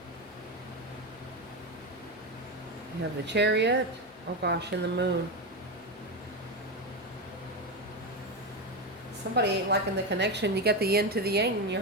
You have the Chariot. Oh gosh, and the moon. Somebody ain't liking the connection. You got the yin to the yang in your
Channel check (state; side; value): normal; both; correlation 0.14